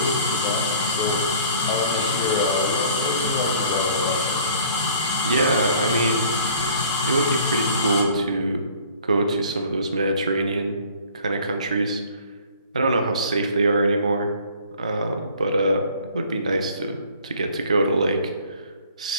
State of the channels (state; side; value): inverted; both; correlation -0.52